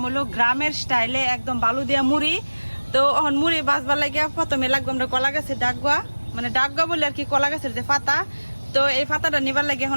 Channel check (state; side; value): inverted; both; correlation -1.00